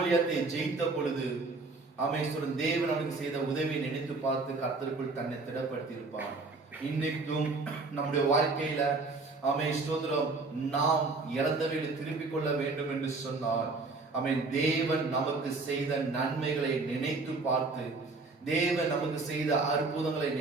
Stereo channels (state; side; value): quieter; left; 3.7 dB